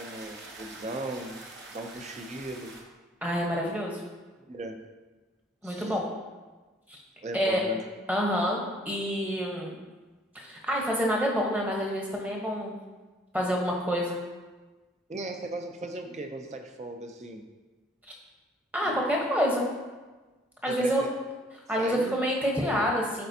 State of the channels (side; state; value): both; normal; correlation 0.60